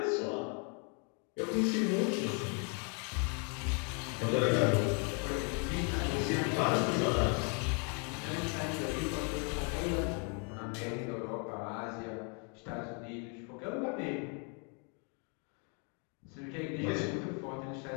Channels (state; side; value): quieter; right; 37.6 dB